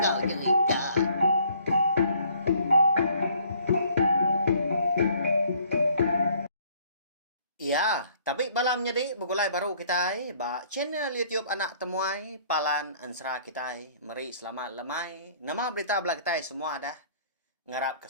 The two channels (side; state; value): both; inverted; correlation -0.59